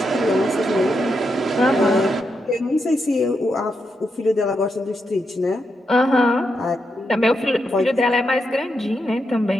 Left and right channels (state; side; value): normal; both; correlation 0.83